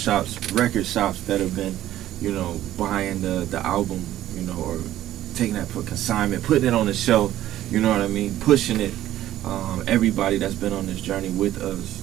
record shops that have been, you know, buying the album, you know, or taking that for consignment, putting it on the shelf, you know what I mean, pushing it. Everybody that's been on this journey with us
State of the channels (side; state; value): left; quieter; 13.3 dB